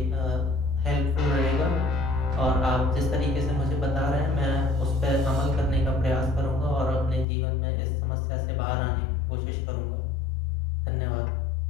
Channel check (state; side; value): drops out; right; at 7.2 s